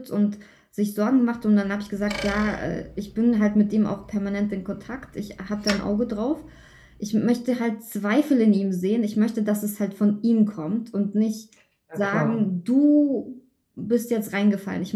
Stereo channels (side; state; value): both; identical; correlation 1.00